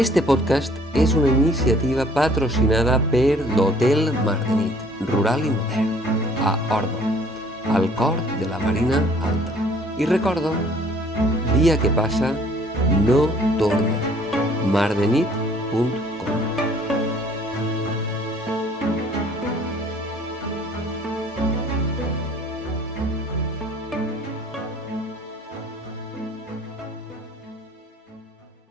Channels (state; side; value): normal; both; correlation 0.56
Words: podcast és una iniciativa patrocinada per l'Hotel Mardenit, rural i modern, a Ordo, al cor de la Marina Alta. I recordo, dia que passa, no torna. mardenit.com